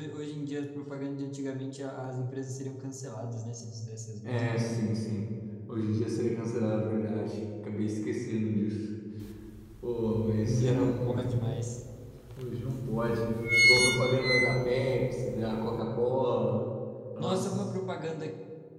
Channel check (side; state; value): both; identical; correlation 1.00